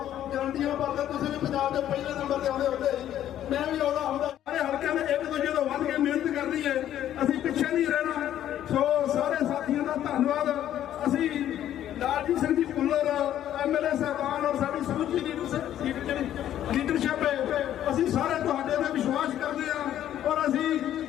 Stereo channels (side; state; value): right; quieter; 11.5 dB